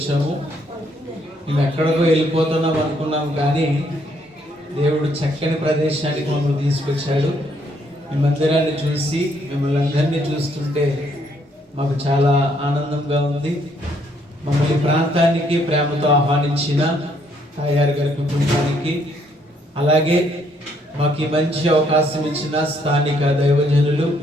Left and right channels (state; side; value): normal; both; correlation 0.70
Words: మేము ఎక్కడికో వెళ్ళిపోతున్నాం అనుకున్నాం, కానీ దేవుడు చక్కని ప్రదేశానికి మమ్మల్ని తీసుకొచ్చాడు. మీ మందిరాన్ని చూసి మిమ్మల్ని అందరినీ చూస్తుంటే మాకు చాలా ఆనందంగా ఉంది. మమ్మల్ని ప్రాంతానికి ప్రేమతో ఆహ్వానించిన తాయారు గారి కుటుంబానికి, అలాగే మాకు ఈ మంచి అవకాశం ఇచ్చిన స్థానిక దైవజనులు